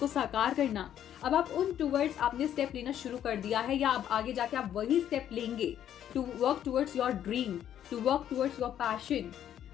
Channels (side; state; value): right; quieter; 10.5 dB